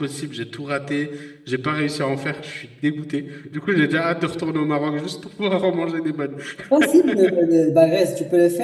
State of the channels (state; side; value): identical; both; correlation 1.00